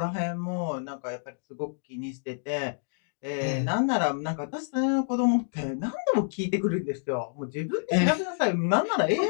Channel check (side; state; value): right; silent; digital silence